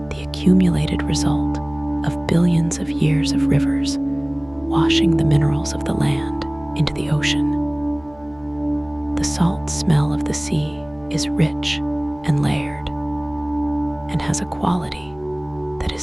the accumulated result of billions of years of rivers washing the minerals of the land into the ocean. The salt smell of the sea is rich and layered, and has a quality that is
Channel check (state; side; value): noise; left; hum, 26 dB below the sound